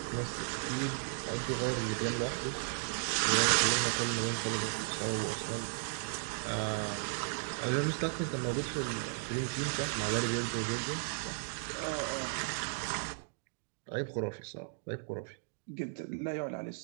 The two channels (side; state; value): left; silent; digital silence